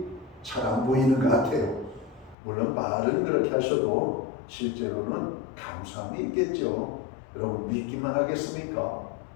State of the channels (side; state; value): right; drops out; at 2.4 s